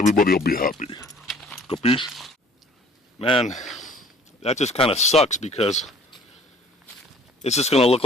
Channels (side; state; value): both; normal; correlation 0.54